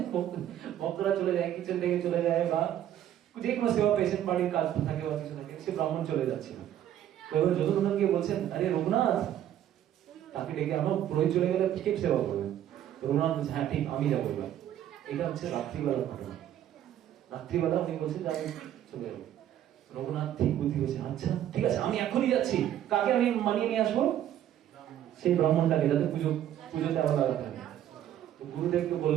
ভক্তরা চলে যায়, কিচেন থেকে চলে যায়, বা যে কোনো সেবা পেশেন্ট বাড়ির কাজ থাকে বা কিছু থাকে, সে ব্রাহ্মণ চলে যাচ্ছিল। তো এবার যদুনন্দন গিয়ে বলছেন, আরে রঘুনাথ, তাকে ডেকে আমার পুরোহিত চলে গেলে কে সেবা করবে? রঘুনাথ বলছে, হ্যাঁ ঠিক, আমি যাবো এবার। এটা হচ্ছে রাত্রিবেলার ঘটনা। রাত্রিবেলা উনি বলছেন যে আমি চলে যাবো। রঘুনাথ ঠিক বুদ্ধি হয়েছে, আচ্ছা ঠিক আছে, আমি এখনই যাচ্ছি। কাকে আমি মানিয়ে নিয়ে আসবো? সেই ব্রাহ্মণটাকে, যাতে পুজোতে আবার লাগাতে হবে। তো গুরুদেবকে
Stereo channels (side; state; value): left; quieter; 11.3 dB